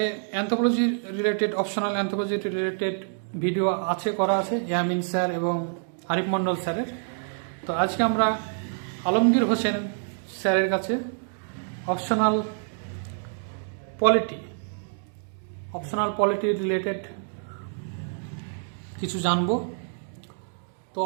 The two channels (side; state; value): left; silent; digital silence